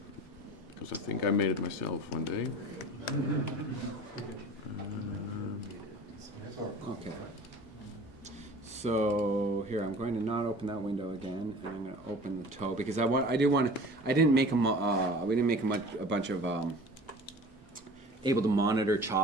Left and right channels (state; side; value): normal; both; correlation 0.42